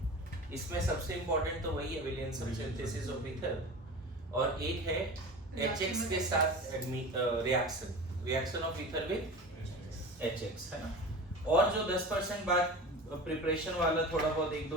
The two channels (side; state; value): both; normal; correlation 0.33